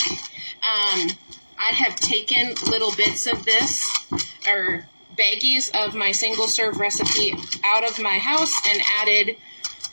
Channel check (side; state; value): both; inverted; correlation -1.00